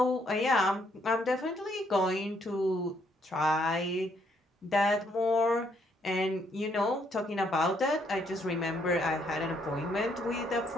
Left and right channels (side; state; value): both; normal; correlation 0.71